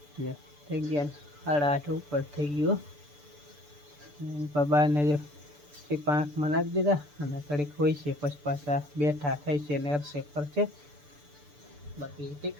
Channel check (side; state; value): left; late; 6.8 ms